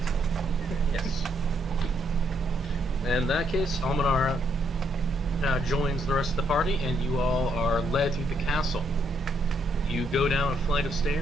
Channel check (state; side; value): normal; both; correlation 0.74